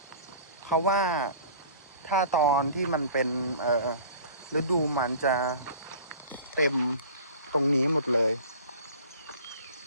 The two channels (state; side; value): inverted; both; correlation -0.43